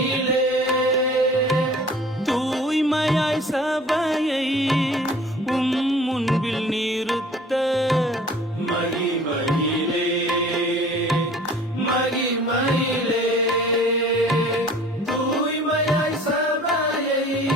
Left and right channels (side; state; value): both; normal; correlation 0.48